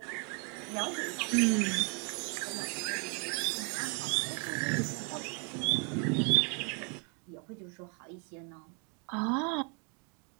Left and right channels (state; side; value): quieter; left; 37.0 dB